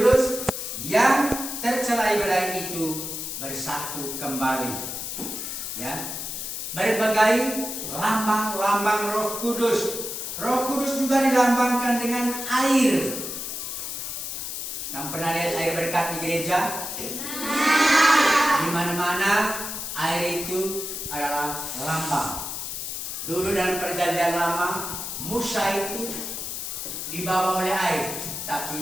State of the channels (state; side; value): noise; left; hiss, 5 dB below the sound